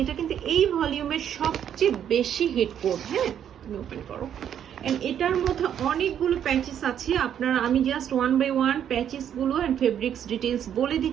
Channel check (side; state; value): left; quieter; 9.4 dB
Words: এটা কিন্তু এই ভলিউমের সবচেয়ে বেশি হিট কোড। হ্যাঁ, তুমি ওপেন করো। এন্ড এটার মধ্যে অনেকগুলো প্যাচেস আছে। আপনারা, আমি জাস্ট ওয়ান বাই ওয়ান প্যাচেসগুলো অ্যান্ড ফেব্রিক্স ডিটেলস বলে